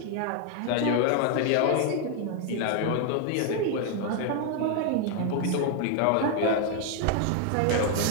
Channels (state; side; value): different; both; correlation 0.00